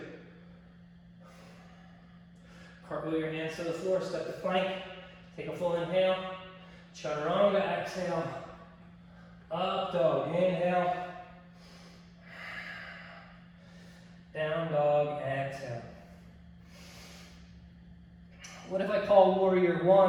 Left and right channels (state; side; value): identical; both; correlation 1.00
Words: Cartwheel your hands to the floor, step to plank, take a full inhale. Chaturanga, exhale. Up dog, inhale. Down dog, exhale. What if I call Warrior